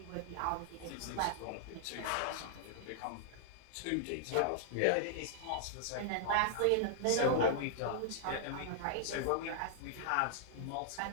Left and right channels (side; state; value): both; different; correlation -0.01